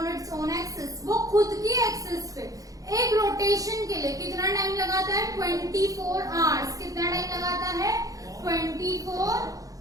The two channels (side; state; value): left; late; 0.17 ms